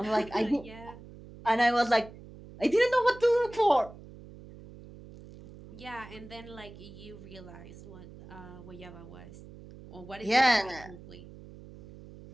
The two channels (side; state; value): right; noise; hum, 17 dB below the sound